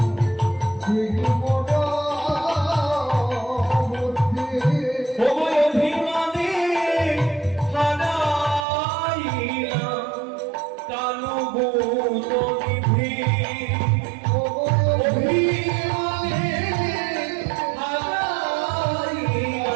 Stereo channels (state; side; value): drops out; left; at 8.7 s